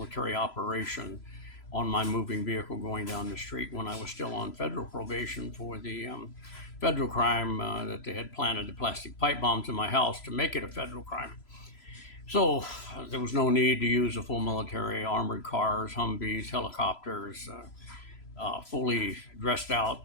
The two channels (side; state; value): right; late; 3.0 ms